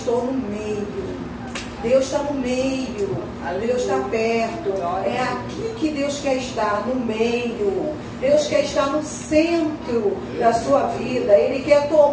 no meio. Deus está no meio, Deus está perto. É aqui que Deus quer estar, no meio. Deus quer estar no centro da sua vida. Ele quer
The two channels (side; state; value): both; identical; correlation 1.00